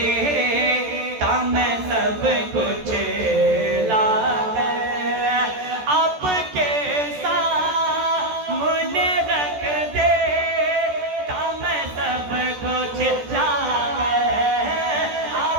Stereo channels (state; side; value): late; left; 14 ms